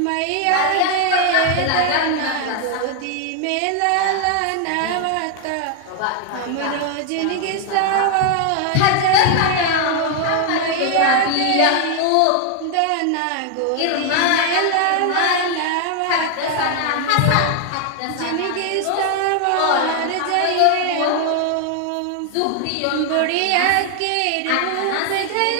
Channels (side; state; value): both; different; correlation 0.00